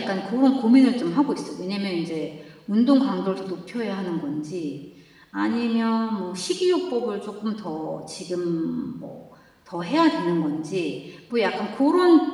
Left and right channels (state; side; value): identical; both; correlation 1.00